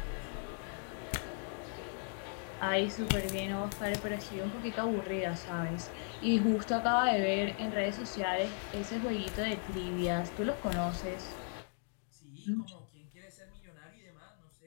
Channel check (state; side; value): silent; right; 53 dB below the other